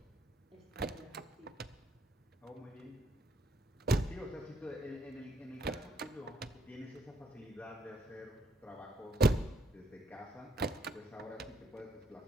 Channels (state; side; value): normal; both; correlation 0.72